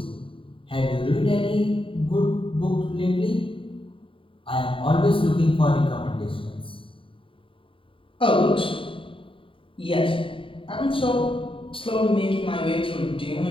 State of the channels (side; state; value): right; late; 0.25 ms